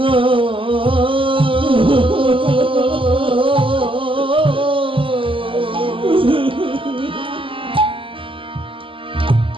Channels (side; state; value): left; late; 0.25 ms